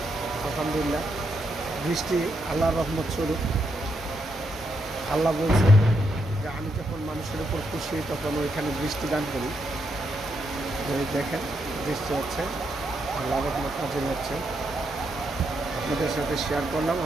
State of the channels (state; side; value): normal; both; correlation 0.80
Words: আলহামদুলিল্লাহ, বৃষ্টি আল্লাহর রহমত স্বরূপ। আল্লাহ বলছে যে আমি যখন মানুষের উপর খুশি হই তখন ওইখানে বৃষ্টি দান করি। দেখেন বৃষ্টি হচ্ছে, আল্লাহর রহমত নাজিল হচ্ছে। আপনাদের সাথে শেয়ার করলাম।